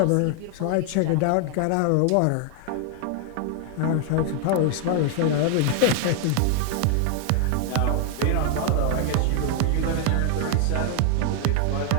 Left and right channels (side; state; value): both; different; correlation 0.00